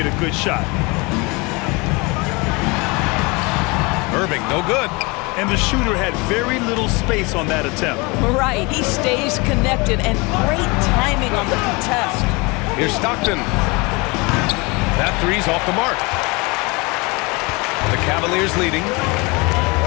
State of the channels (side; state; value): right; quieter; 26.9 dB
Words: a good shot. Irving, no good. And the shooter had very little space on that attempt. Right, he stays connected, and great timing on the contest. Here's Stockton. That three's off the mark. The Cavaliers leading.